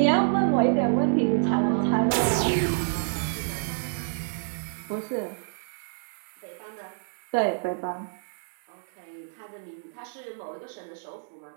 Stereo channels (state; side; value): silent; left; digital silence